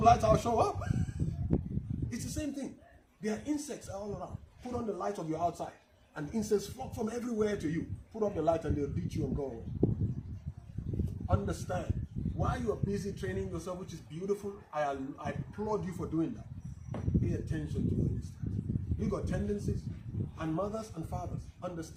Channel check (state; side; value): identical; both; correlation 1.00